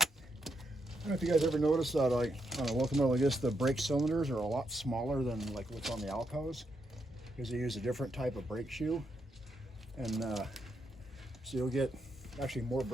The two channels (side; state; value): both; normal; correlation 0.80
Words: don't know if you guys ever noticed that, like on a locomotive like this, the brake cylinders are a lot smaller than like what's on the Alcos, because they use a different type of brake shoe, and so you'll get actually more